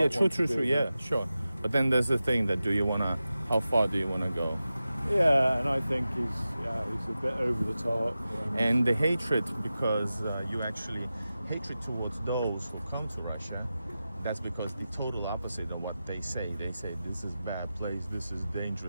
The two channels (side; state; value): both; inverted; correlation -0.93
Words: True. Yeah, sure. But then there's the thing that how far do you wanna go? Yeah, and I think he's a bit over the top. And the hatred, because hatred towards those who come to Russia that's because the total opposite of what they say. They say this is bad place, this is